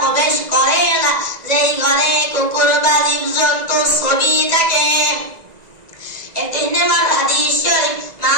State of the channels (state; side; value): late; left; 1.9 ms